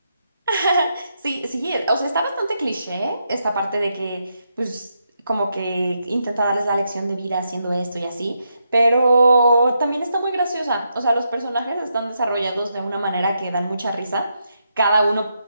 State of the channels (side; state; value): both; inverted; correlation -0.82